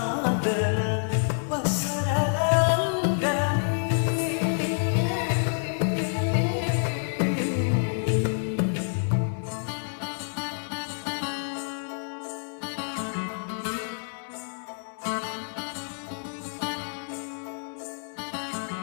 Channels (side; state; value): right; silent; 59 dB below the other